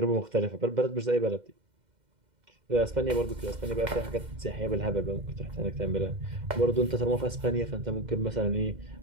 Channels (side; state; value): left; late; 2.1 ms